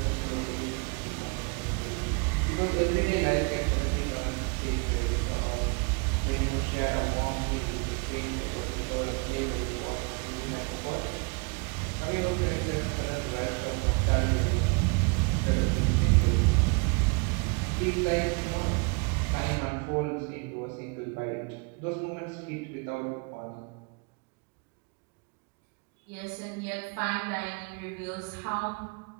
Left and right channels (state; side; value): quieter; left; 32.0 dB